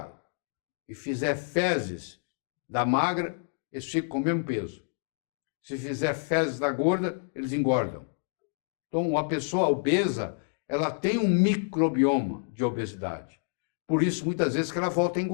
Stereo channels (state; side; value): silent; right; digital silence